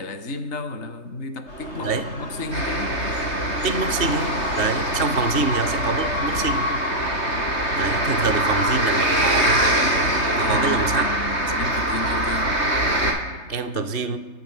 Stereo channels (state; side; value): late; right; 3.3 ms